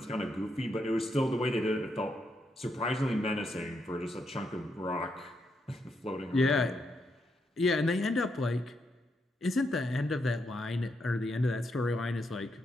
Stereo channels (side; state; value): both; normal; correlation 0.80